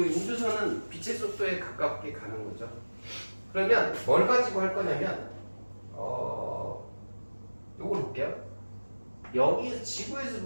빛의 속도에 가깝게 가는 거죠. 그러면 뭘 가지고 할 거냐면 요걸 볼게요. 여기에서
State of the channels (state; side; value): inverted; both; correlation -1.00